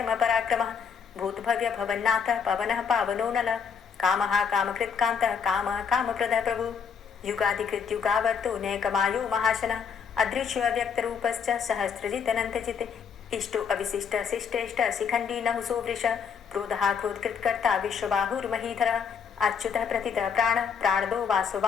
भूतभव्य भवन्नाथः पवनः पावनो नलः कामः कामकृत्कान्तः कामः कामप्रदः प्रभु युगाधिकृत्युगावर्तो नैकमायो महाशनः अदृश्यो अव्यक्तरूपश्च सहस्रजितनन्तजित् इष्टो अविशिष्ट शिष्टेष्ट शिखण्डी नहुसो वृष क्रोधः क्रोधकृत्कर्ता विश्वबाहुर्महीधरः अच्युतः प्रतितः प्राणदो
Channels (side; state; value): right; quieter; 6.7 dB